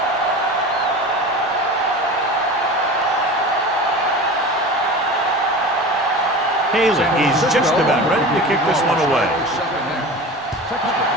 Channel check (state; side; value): normal; both; correlation 0.33